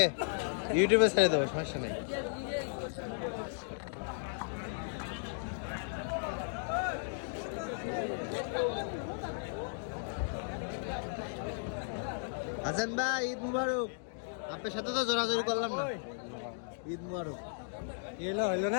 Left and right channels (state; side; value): silent; right; digital silence